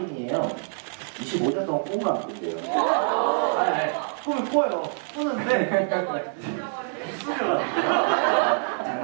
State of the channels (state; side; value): silent; left; digital silence